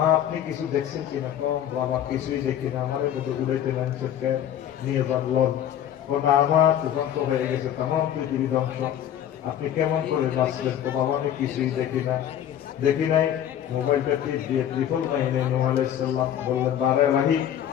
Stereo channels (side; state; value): right; quieter; 10.5 dB